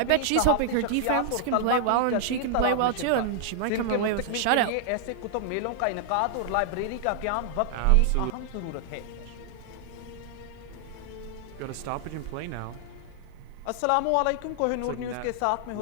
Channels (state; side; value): different; both; correlation 0.00